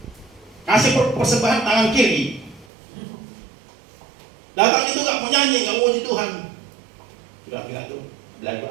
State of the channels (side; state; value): left; drops out; at 2.7 s